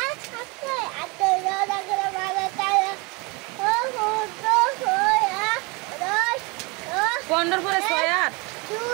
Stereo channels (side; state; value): left; quieter; 28.2 dB